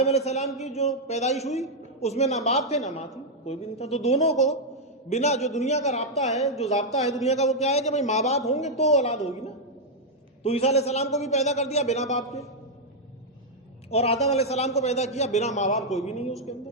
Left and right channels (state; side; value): normal; both; correlation -0.02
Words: علیہ السلام کی جو پیدائش ہوئی اس میں نہ باپ تھے نہ ماں تھی، کوئی بھی نہیں تھا. تو دونوں کو بنا جو دنیا کا رابطہ ہے، جو ضابطہ ہے دنیا کا، وہ کیا ہے کہ بھائی ماں باپ ہوں گے تو اولاد ہوگی نا. تو عیسیٰ علیہ السلام کو بھی پیدا کر دیا بنا باپ کے، اور آدم علیہ السلام کو پیدا کیا بنا ماں باپ، کوئی بھی نہیں ہے اس کے اندر.